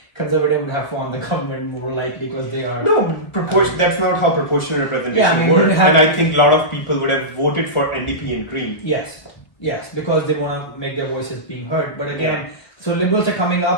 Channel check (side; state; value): right; late; 1.1 ms